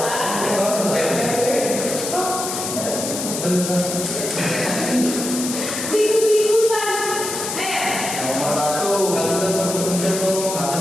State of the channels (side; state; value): left; noise; hiss, 5 dB below the sound